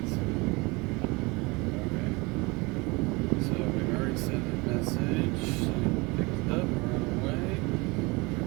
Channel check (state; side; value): quieter; left; 25.7 dB